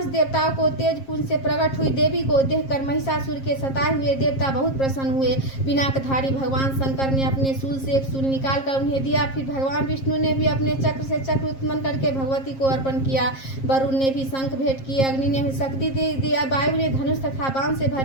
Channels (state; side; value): late; right; 7.5 ms